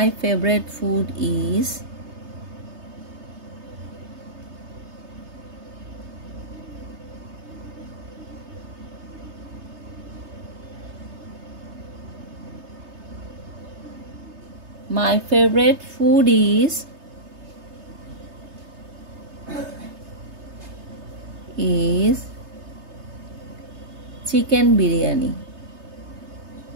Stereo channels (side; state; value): left; late; 3.3 ms